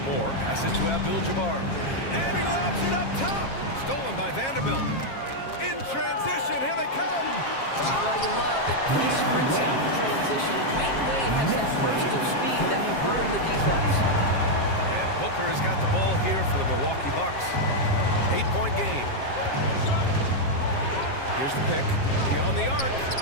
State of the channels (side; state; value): right; late; 7.4 ms